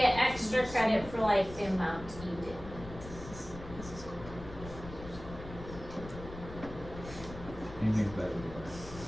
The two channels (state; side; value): noise; left; rumble, 13 dB below the sound